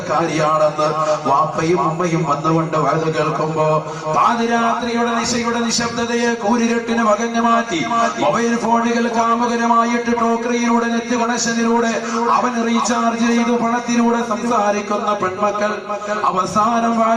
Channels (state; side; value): identical; both; correlation 1.00